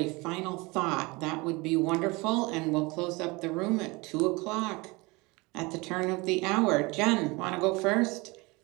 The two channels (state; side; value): quieter; left; 24.9 dB